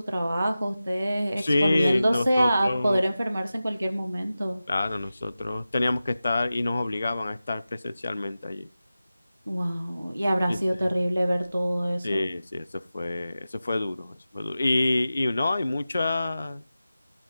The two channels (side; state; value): both; inverted; correlation -0.94